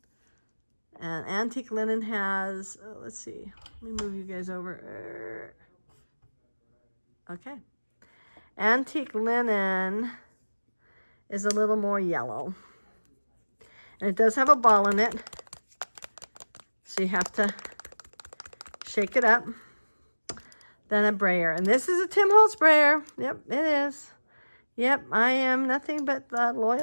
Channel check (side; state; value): both; inverted; correlation -1.00